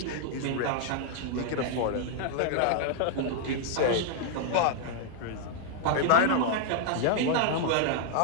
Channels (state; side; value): different; both; correlation 0.00